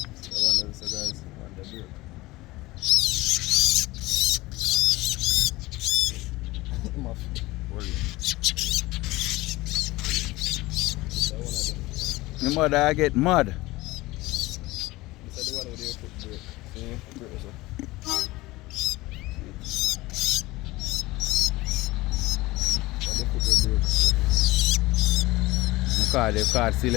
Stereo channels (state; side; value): quieter; right; 19.8 dB